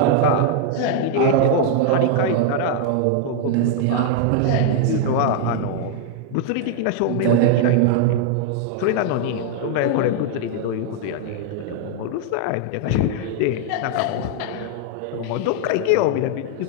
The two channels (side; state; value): both; different; correlation 0.00